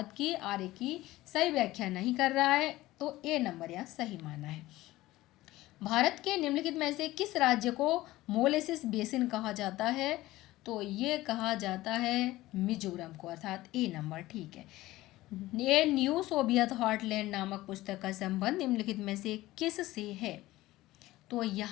कि आर की सही व्याख्या नहीं कर रहा है, तो ए नंबर यहाँ सही माना है। भारत के निम्नलिखित में से किस राज्य को मोलेसिस बेसिन कहा जाता है? तो ये कहा जाता है मिजोरम को, अर्थात ए नंबर ठीक है। ये न्यू सोवियत हॉटलैंड नामक पुस्तक का संबंध निम्नलिखित में से किस से है? तो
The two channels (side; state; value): right; quieter; 17.3 dB